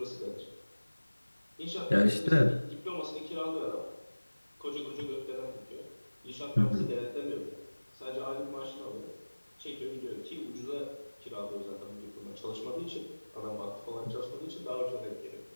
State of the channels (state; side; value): inverted; both; correlation -1.00